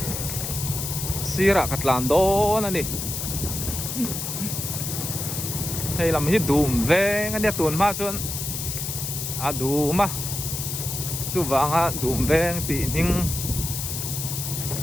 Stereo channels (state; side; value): noise; left; hiss, 4 dB below the sound